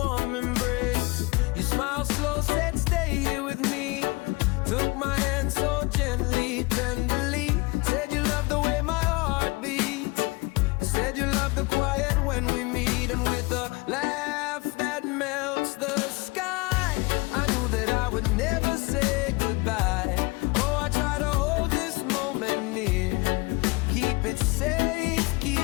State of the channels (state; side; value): quieter; right; 25.3 dB